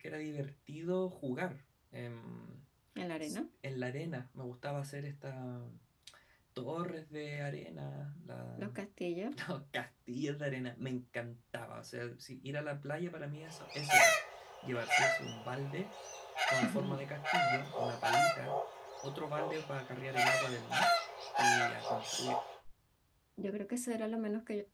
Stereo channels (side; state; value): both; identical; correlation 1.00